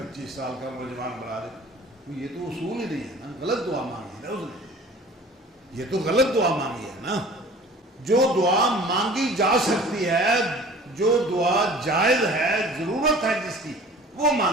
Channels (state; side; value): normal; both; correlation 0.45